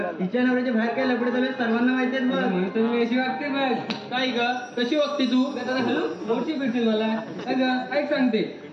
तिच्या नवऱ्याच्या बाहेर काय लपडे चालू सर्वांना माहिती आहेत बघ. म्हणून तर मी अशी वागते बघ. काय ग कशी वागते तू? हॅलो मोठी भेटतील मला. अगं ऐक सांगते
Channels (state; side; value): identical; both; correlation 1.00